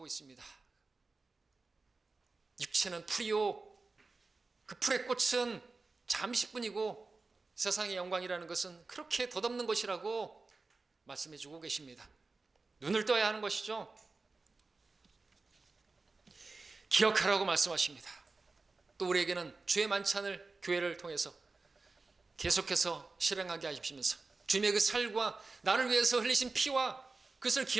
있습니다. 육체는 풀이요, 그 풀의 꽃은 잠시뿐이고 세상의 영광이라는 것은 그렇게 덧없는 것이라고 말씀해 주고 계십니다. 눈을 떠야 하는 것이죠. 기억하라고 말씀하십니다. 또 우리에게는 주의 만찬을 교회를 통해서 계속해서 실행하게 하시면서 주님의 그 살과 나를 위해서 흘리신 피와 그것을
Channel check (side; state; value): left; quieter; 3.8 dB